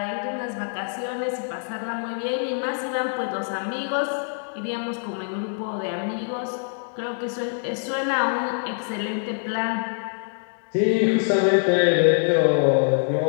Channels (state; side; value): silent; right; 62 dB below the other